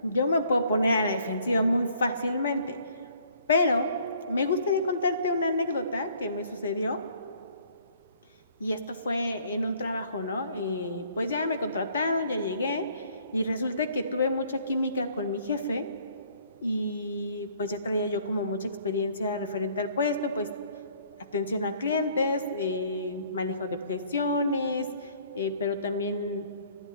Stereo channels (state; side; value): inverted; both; correlation -0.59